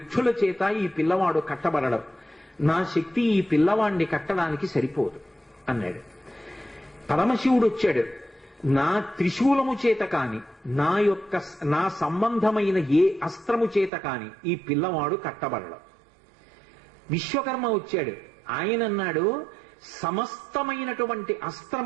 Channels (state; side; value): drops out; left; at 13.9 s